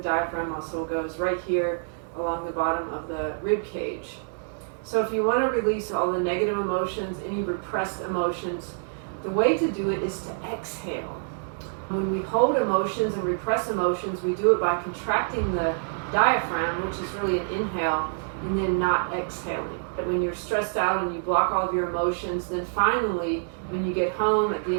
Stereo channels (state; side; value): silent; left; digital silence